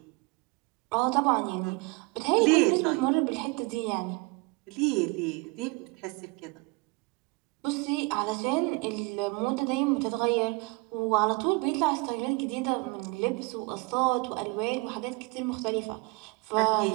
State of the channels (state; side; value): quieter; left; 26.9 dB